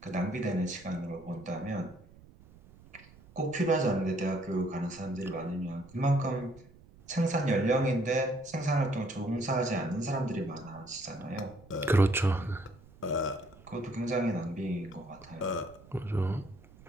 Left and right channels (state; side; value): noise; right; rumble, 23 dB below the sound